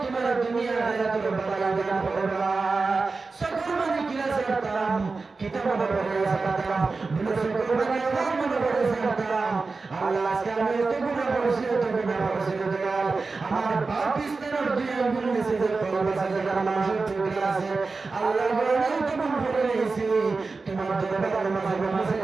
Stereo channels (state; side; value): quieter; left; 4.1 dB